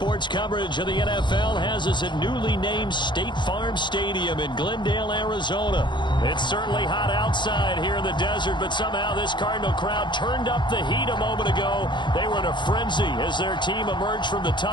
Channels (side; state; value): right; late; 0.22 ms